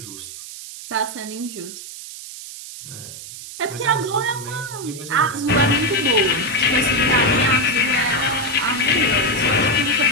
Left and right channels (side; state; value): right; noise; hiss, 12 dB below the sound